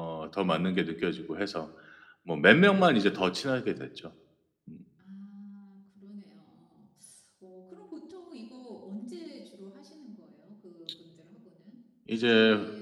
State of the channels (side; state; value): both; identical; correlation 1.00